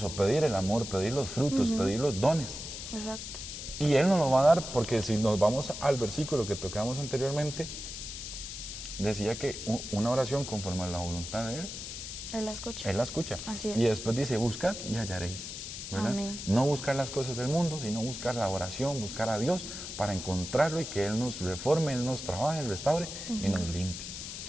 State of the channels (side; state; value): left; noise; hiss, 8 dB below the sound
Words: pedir el amor, pedir los frutos, pedir los dones? Exacto. Y Él nos lo va a dar, porque si nos vamos al versículo que tocamos anteriormente, decía que una oración conforme a la voluntad de Él, Él la escucha. Él la escucha. Así es. Y después dice, buscad y hallaréis, ¿verdad? Amén. No buscar las cosas del mundo, sino buscar la oración, buscar a Dios para encontrarlo y que Él nos reforme, Él nos trabaje, restaure y nos limpie.